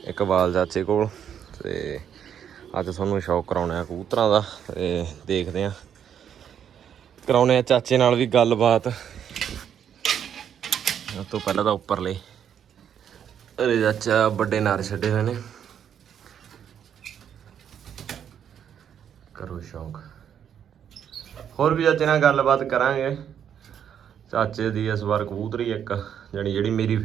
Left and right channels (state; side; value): quieter; left; 8.8 dB